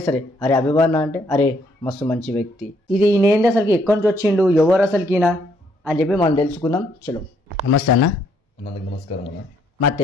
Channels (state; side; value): normal; both; correlation 0.69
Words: సరే అరే అభిమాన అంటే అరే మస్తు మంచి వ్యక్తి. ఇది ఈయనేంది అసలుకి ఎక్కడి నుంచి వచ్చిండు, ఎవరు అసలుకి ఈయన అని చెప్పి మనం తెలుసుకుందాం. చలో. నమస్తే అన్న. నమస్కారం అన్న. మా